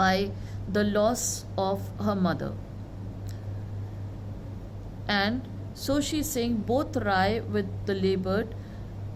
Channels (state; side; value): identical; both; correlation 1.00